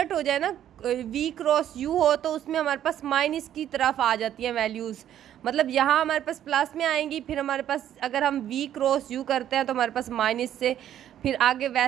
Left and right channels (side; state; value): left; quieter; 11.0 dB